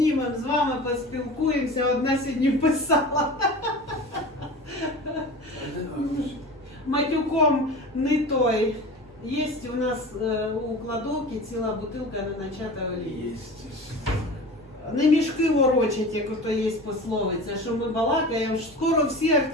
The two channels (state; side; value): normal; both; correlation 0.34